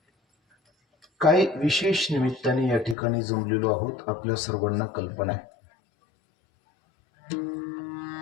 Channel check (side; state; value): right; drops out; at 3.0 s